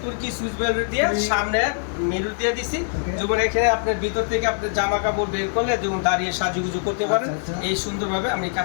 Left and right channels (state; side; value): silent; right; digital silence